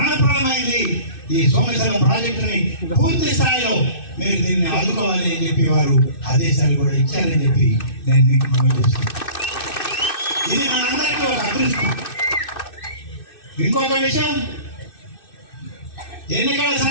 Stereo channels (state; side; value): late; right; 2.6 ms